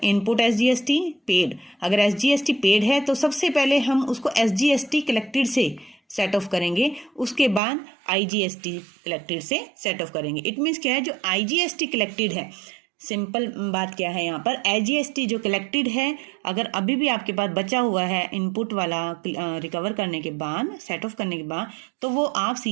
input SGST paid. अगर एसजीएसटी पेड है तो सबसे पहले हम उसको एसजीएसटी कलेक्टेड से सेट ऑफ करेंगे, उसके बाद आईजीएसटी कलेक्टेड से सेट ऑफ करेंगे। इट मीन्स क्या है? जो आईजीएसटी कलेक्टेड है, सिंपल बात क्या है यहाँ पर, एसजीएसटी जो कलेक्टेड है, अगर अभी भी आपके पास बचा हुआ है इनपुट वाला रिकवर करने के बाद, सेट ऑफ करने के बाद, तो वो आप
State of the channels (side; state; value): left; drops out; at 7.6 s